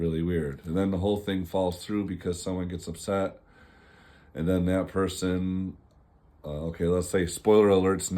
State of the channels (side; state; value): both; identical; correlation 1.00